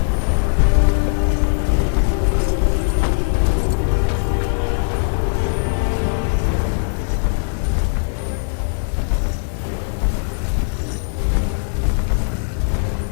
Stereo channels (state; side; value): silent; right; digital silence